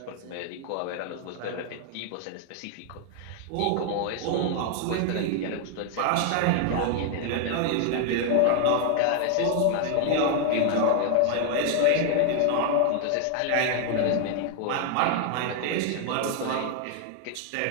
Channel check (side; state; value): both; different; correlation 0.00